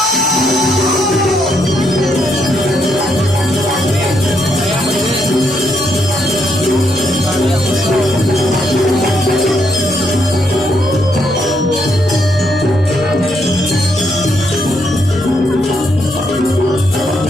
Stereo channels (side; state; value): both; normal; correlation 0.76